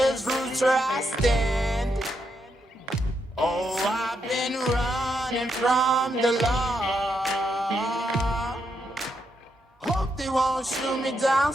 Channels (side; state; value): both; normal; correlation 0.81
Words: roots where I stand. Oh, I've been running from the law, hope they won't shoot me down